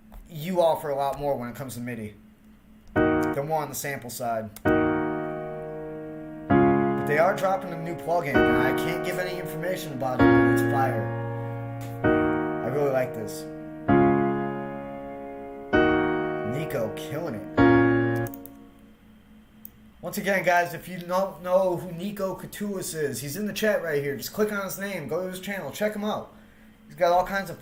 you offer a lot more when it comes to MIDI. They're more on the sample side. But they are dropping a new plugin. And I can't give any information about it, but it's fire. I really like this. NIKO killing it. Once again, guys, if you don't know who NIKO Katulis is, he's in the chat right here. Just click on his name, go to his channel, check him out. He's got all kinds of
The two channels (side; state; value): both; identical; correlation 1.00